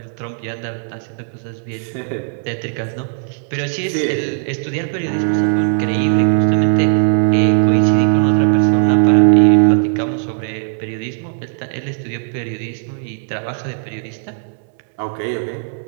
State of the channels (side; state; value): left; silent; 62 dB below the other